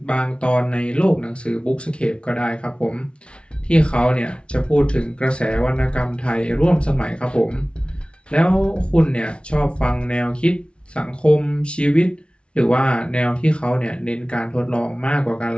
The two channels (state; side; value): late; right; 0.058 ms